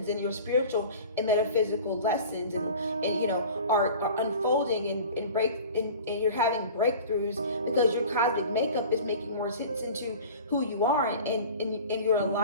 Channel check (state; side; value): inverted; both; correlation -0.40